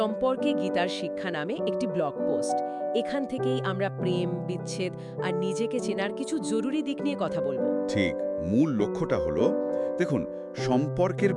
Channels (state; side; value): identical; both; correlation 1.00